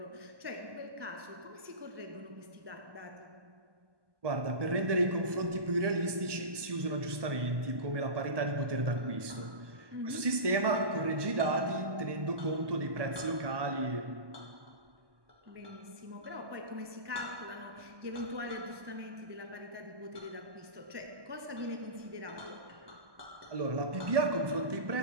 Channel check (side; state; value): left; late; 1.2 ms